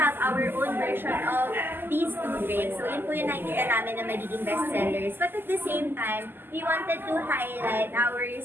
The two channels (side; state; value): left; late; 0.096 ms